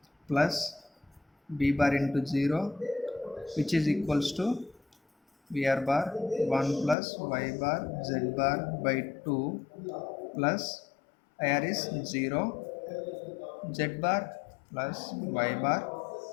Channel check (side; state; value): right; drops out; at 7.0 s